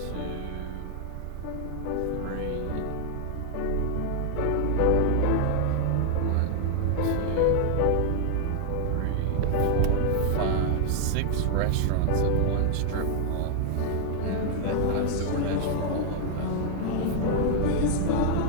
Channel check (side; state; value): both; different; correlation 0.00